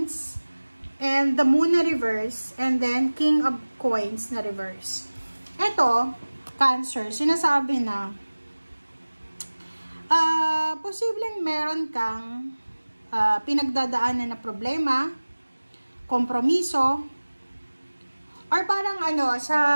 and the Moon na reverse and then King of Coins na reverse. Ito, Cancer, sinasabi na posibleng meron kang pinagdadaanan na problema, kompromiso, or parang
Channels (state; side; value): inverted; both; correlation -1.00